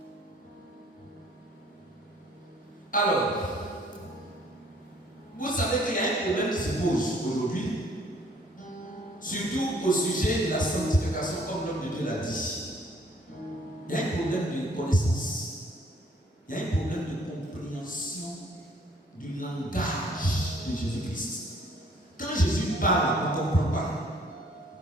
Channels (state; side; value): normal; both; correlation 0.60